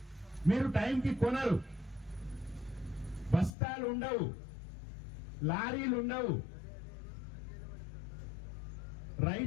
మీరు టైంకి కొనరు, బస్తాలు ఉండవు, లారీలు ఉండవు.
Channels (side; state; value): right; drops out; at 3.5 s